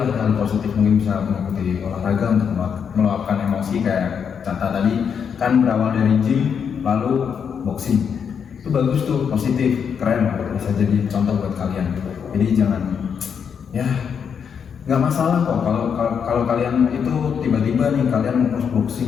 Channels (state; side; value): quieter; right; 7.1 dB